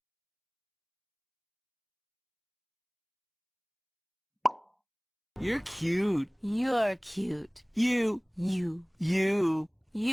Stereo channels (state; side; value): identical; both; correlation 1.00